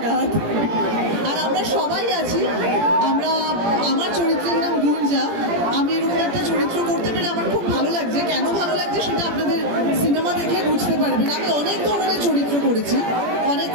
আর আমরা সবাই আছি। আমার চরিত্রের নাম গুঞ্জা। আমি এরকম একটা চরিত্র করতে পেরে আমার খুব ভালো লাগছে। কেন ভালো লাগছে সেটা আপনাদের সিনেমা দেখে বুঝতে পারবেন। আমি অনেক ধরনের চরিত্র করেছি, অনেক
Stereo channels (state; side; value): late; left; 17 ms